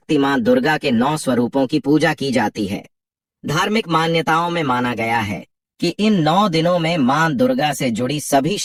मां दुर्गा के 9 स्वरूपों की पूजा की जाती है। धार्मिक मान्यताओं में माना गया है कि इन 9 दिनों में मां दुर्गा से जुड़ी सभी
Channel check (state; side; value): identical; both; correlation 1.00